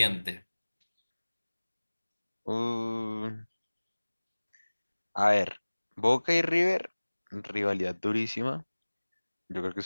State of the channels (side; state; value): both; inverted; correlation -1.00